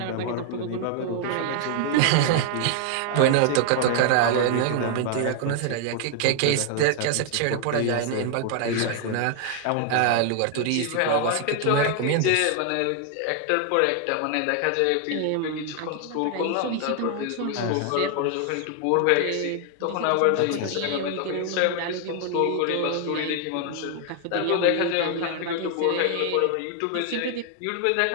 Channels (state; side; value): different; both; correlation 0.00